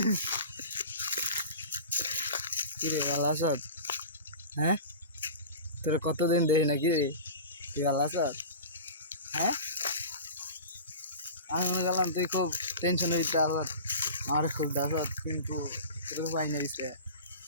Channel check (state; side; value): inverted; both; correlation -0.34